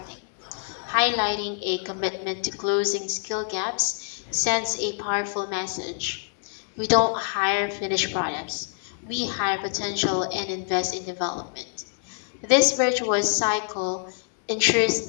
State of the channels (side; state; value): right; silent; digital silence